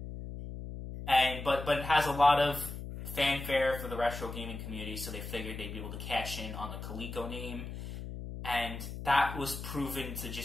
But it has a lot of fanfare for the retro gaming community, so they figured they'd be able to cash in on the Coleco name. And that was proven to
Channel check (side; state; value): left; noise; hum, 8 dB below the sound